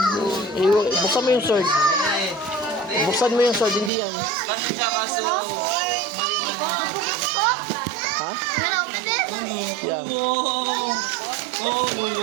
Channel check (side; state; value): left; drops out; at 3.9 s